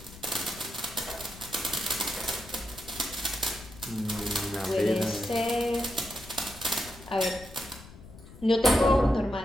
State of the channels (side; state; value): left; noise; rumble, 18 dB below the sound